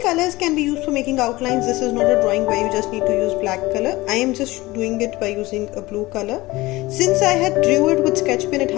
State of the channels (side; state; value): right; quieter; 20.0 dB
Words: colors can be used for making outlines. This is not a drawing where you just need to use black color. I am just doing it by using a blue color. Since I had drew it with sketch pen, it